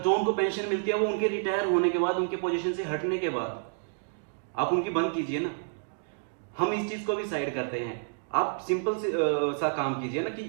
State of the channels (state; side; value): silent; left; digital silence